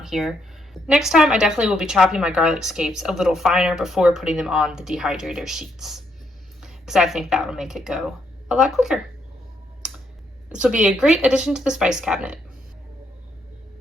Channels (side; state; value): both; normal; correlation 0.75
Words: here. Next time, I definitely will be chopping my garlic scapes a little finer before putting them on the dehydrator sheets, because I think that will make it go a lot quicker. This will be a great addition to the spice cabinet.